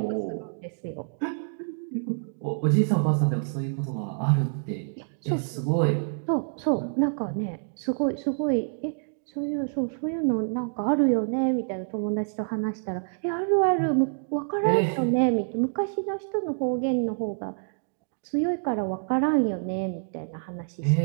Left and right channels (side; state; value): left; silent; digital silence